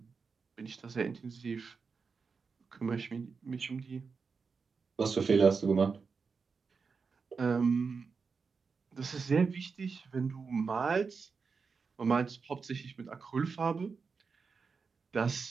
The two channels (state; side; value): quieter; left; 5.1 dB